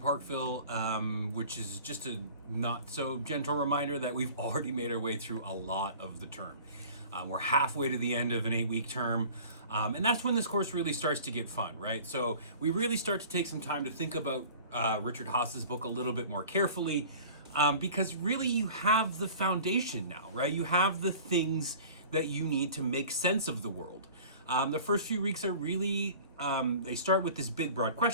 which is just a not so gentle reminder that we've already made our way through a lot of the term. We're halfway to the end of an 8-week term, and that's when this course really starts to get fun, right? So we really start to take some time to think about Richard Haas's book a little bit more carefully, because really you have the foundation now, right? You have the things that you need to make sense of the world. The first few weeks are really, they start with this big broad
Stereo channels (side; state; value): both; inverted; correlation -0.43